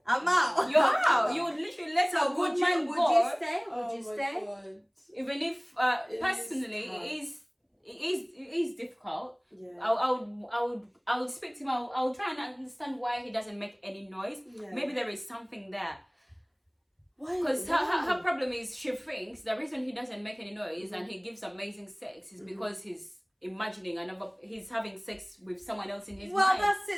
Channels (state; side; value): identical; both; correlation 1.00